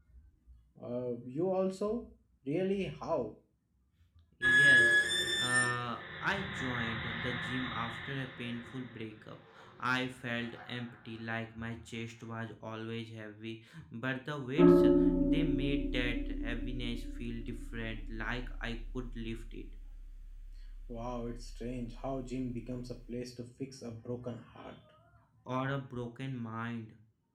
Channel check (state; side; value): identical; both; correlation 1.00